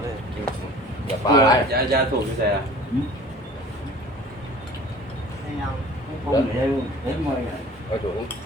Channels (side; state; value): both; normal; correlation 0.46